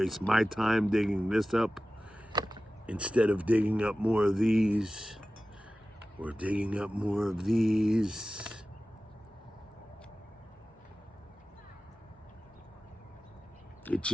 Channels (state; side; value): normal; both; correlation 0.95